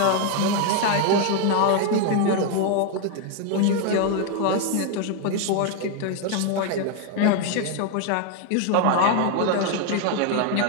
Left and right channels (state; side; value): different; both; correlation 0.01